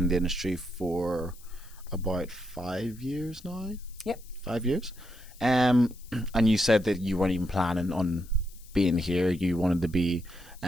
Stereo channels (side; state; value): left; noise; hiss, 23 dB below the sound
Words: the industry for about 5 years now. Yep. 5 years. And you said that you weren't even planning on being here. You wanted to be